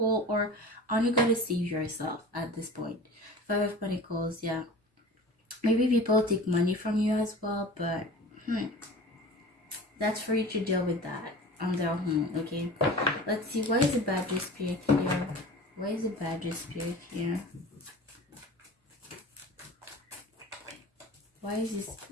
or are you gonna save yourself at this point? Five of Pentacles, yeah. Maybe people take money from you as well, but that's for you to deal with that on their own, okay? Let's see, why is the Badger Spirit here? Why is the Badger Spirit here? Why is this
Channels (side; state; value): both; normal; correlation 0.38